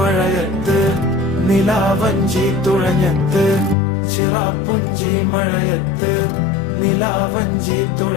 നിലാവഞ്ചി തുഴഞ്ഞത്ത് ചിറാപ്പുഞ്ചി മഴയത്ത് നിലാവഞ്ചി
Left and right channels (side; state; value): right; drops out; at 3.8 s